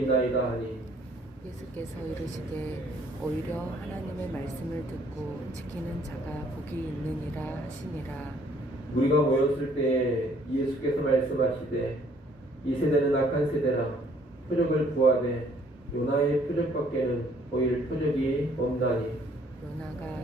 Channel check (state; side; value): normal; both; correlation 0.62